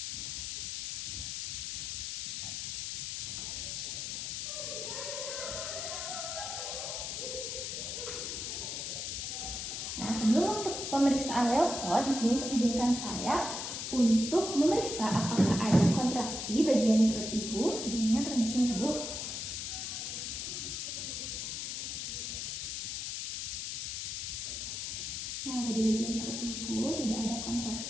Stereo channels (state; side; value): noise; left; hiss, 4 dB below the sound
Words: Nah, sebelum untuk pemeriksaan Leopold, di sini izinkan saya untuk memeriksa apakah ada kontraksi bagian perut ibu. Sebelumnya permisi, Ibu. Nah, pada bagian perut ibu tidak ada